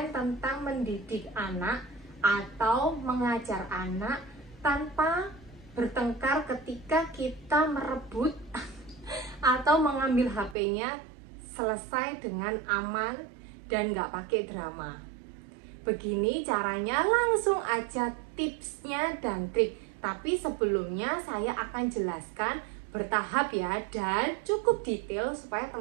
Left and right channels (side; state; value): left; drops out; at 10.6 s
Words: tentang mendidik anak atau mengajar anak tanpa bertengkar ketika kita merebut atau mengambil HP-nya, selesai dengan aman dan nggak pakai drama. Begini caranya, langsung aja tipsnya dan trik. Tapi sebelumnya saya akan jelaskan bertahap ya, dan cukup detail supaya